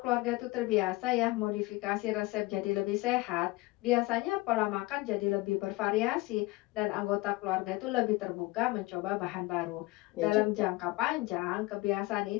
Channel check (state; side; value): quieter; right; 21.2 dB